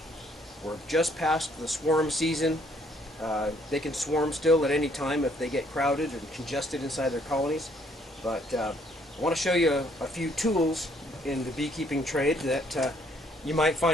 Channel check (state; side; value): normal; both; correlation 0.66